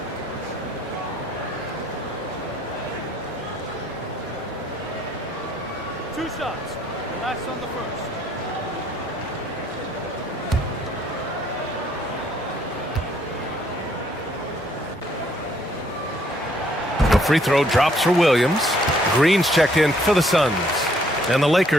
Two shots. Last on the first. The free throw drops for Williams. Green's checked in for the Suns. And the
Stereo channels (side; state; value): both; normal; correlation 0.66